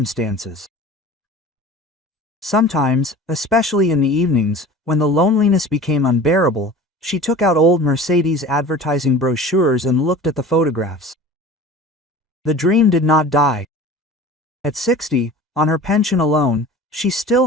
Sometimes, especially in the evenings, when the loneliness became unbearable, she took out old Mercedes advertising brochures and looked at the photographs. The dream did not die. At 60, on her pension alone, she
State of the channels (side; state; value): both; normal; correlation 0.39